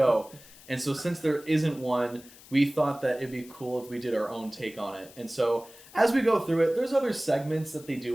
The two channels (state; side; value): noise; left; hiss, 21 dB below the sound